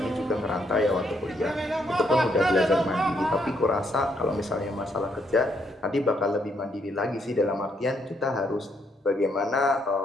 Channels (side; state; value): both; normal; correlation 0.73